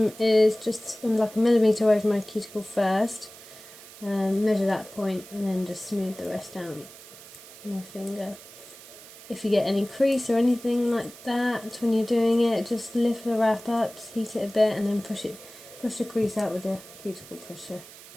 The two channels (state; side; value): noise; right; hiss, 18 dB below the sound